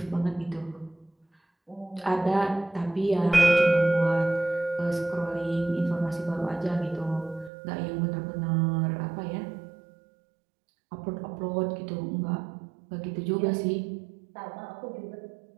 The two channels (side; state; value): left; drops out; at 7.5 s